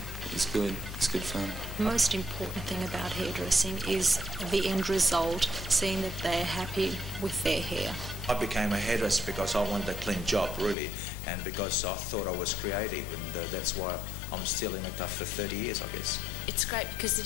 is good. It's good fun. The most important thing about hairdressing is the end result, seeing that they're happy with their hair. I became a hairdresser because I wanted a clean job, really, and because I thought I was creative, and that's why I'm still in it after 30 years, I guess. It's great because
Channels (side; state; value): right; drops out; at 10.8 s